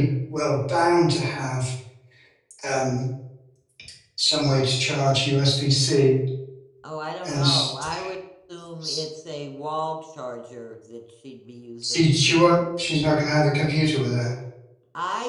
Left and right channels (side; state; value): both; identical; correlation 1.00